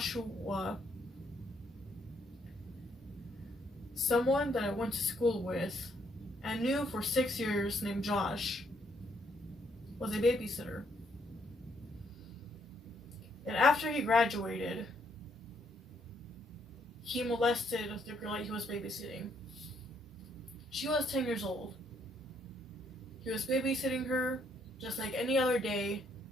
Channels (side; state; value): both; normal; correlation 0.71